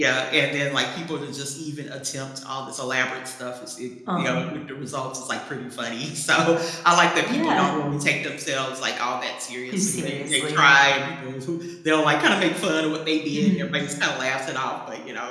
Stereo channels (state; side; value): identical; both; correlation 1.00